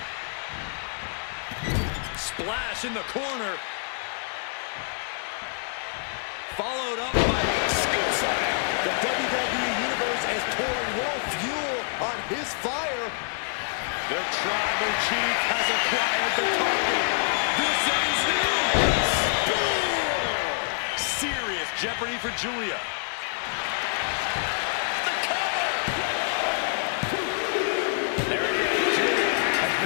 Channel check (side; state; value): right; silent; digital silence